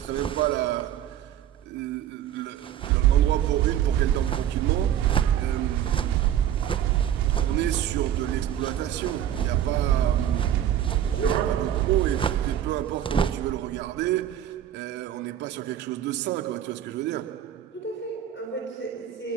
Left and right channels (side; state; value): left; quieter; 10.7 dB